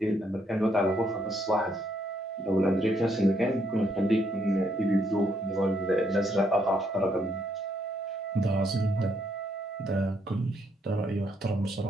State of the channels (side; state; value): both; normal; correlation 0.73